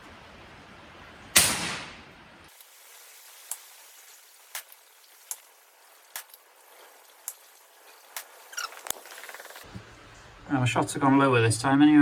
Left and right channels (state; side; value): identical; both; correlation 1.00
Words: My shots have gone lower this time